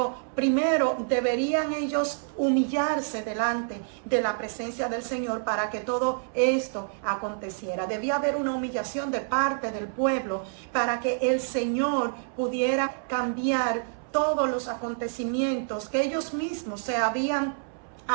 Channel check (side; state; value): left; silent; 60 dB below the other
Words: primero deberían ellos humillarse delante de la presencia del Señor para que todo esto aconteciera. Debía haber una humillación de parte del pueblo para que el Señor pudiera cambiar todos los acontecimientos que ellos mismos se habían